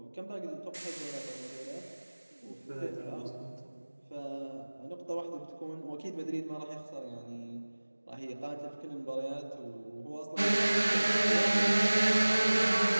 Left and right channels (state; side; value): inverted; both; correlation -1.00